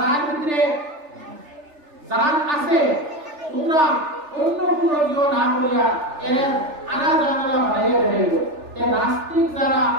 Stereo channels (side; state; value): left; late; 3.4 ms